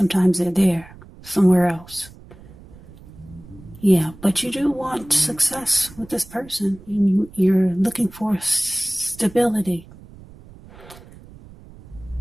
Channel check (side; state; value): right; noise; rumble, 20 dB below the sound